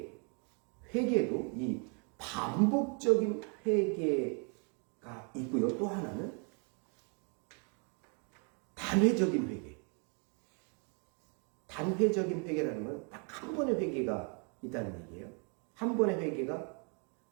이 반복적인 회개가 있고요. 또 하나는 단회적인 회개. 단회적인 회개라는 건 딱 한 번의 회개가 있다는 얘기예요. 한 번의 회개가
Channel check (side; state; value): left; quieter; 37.4 dB